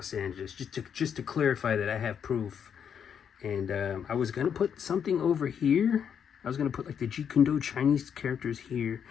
Angeles. Just to clarify that I have proof. And I was going to put something over here. I was going to put like the Jeet Kune Do Chinese characters here,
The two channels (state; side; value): quieter; right; 7.8 dB